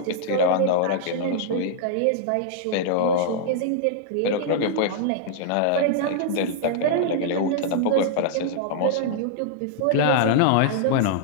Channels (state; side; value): different; both; correlation -0.01